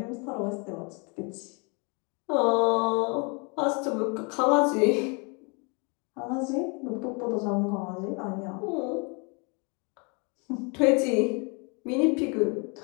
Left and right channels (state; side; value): quieter; right; 32.7 dB